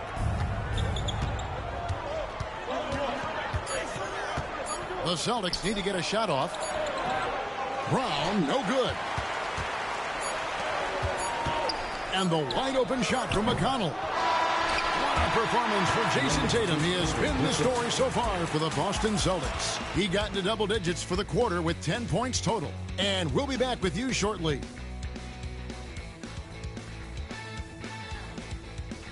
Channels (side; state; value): both; identical; correlation 1.00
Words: The Celtics need to get a shot off. Brown, no good. And the wide open shot from McConnell. What a performance for Jason Tatum. He has been the story so far for the Boston Celtics. He got into double digits for the quarter with 10 points total. And we'll be back with you shortly.